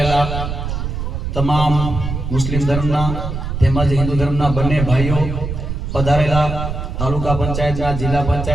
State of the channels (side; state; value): right; noise; rumble, 4 dB below the sound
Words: તમામ મુસ્લિમ ધર્મના તેમજ હિન્દુ ધર્મના બંને ભાઈઓ પધારેલા તાલુકા પંચાયતના, જિલ્લા